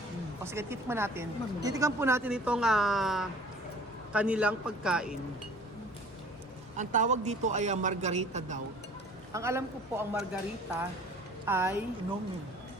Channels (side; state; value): both; normal; correlation 0.48